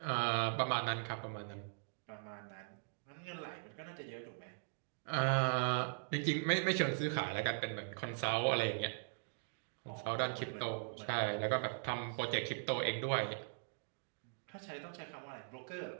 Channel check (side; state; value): left; silent; digital silence